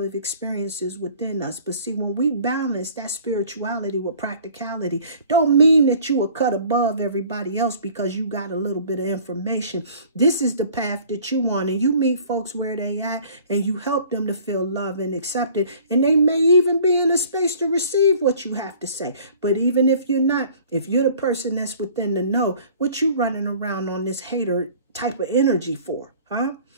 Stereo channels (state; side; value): inverted; both; correlation -0.50